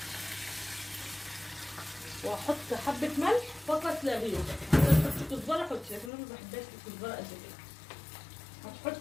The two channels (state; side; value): drops out; right; at 6.1 s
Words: واحط حبه ملح فقط لا غير. تحطي كزبره حطي، لكن انا ما بحبهاش الكزبره قد كده.